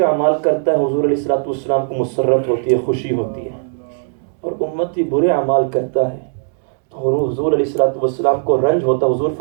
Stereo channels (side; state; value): left; silent; digital silence